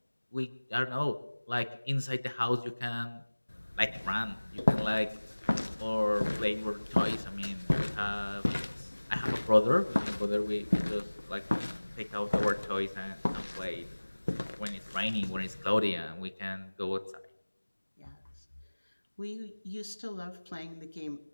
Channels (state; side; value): inverted; both; correlation -1.00